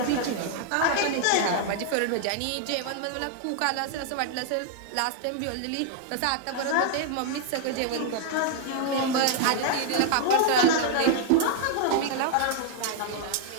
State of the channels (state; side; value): different; both; correlation 0.00